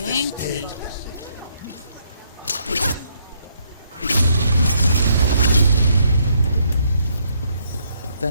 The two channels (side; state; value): both; inverted; correlation -0.72